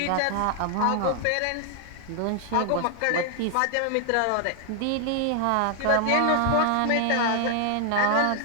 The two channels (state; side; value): different; both; correlation 0.00